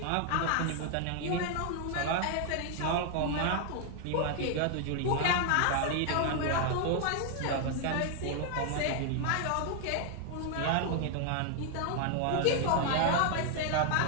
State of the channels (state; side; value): different; both; correlation 0.00